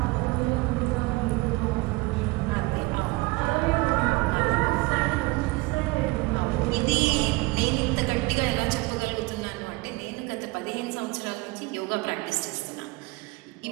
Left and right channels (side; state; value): left; quieter; 23.1 dB